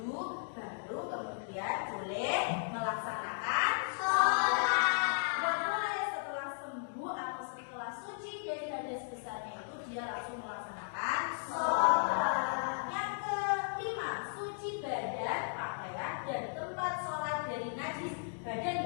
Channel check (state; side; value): silent; right; digital silence